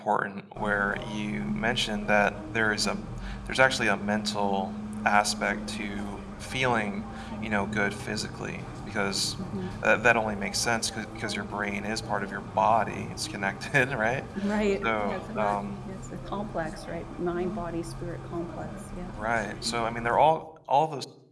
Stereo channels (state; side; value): identical; both; correlation 1.00